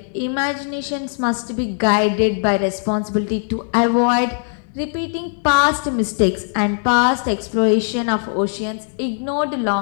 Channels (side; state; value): right; silent; 56 dB below the other